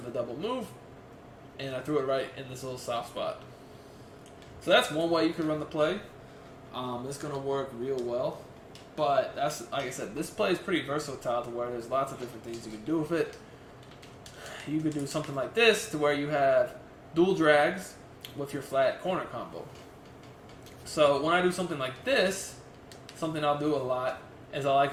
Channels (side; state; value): both; identical; correlation 1.00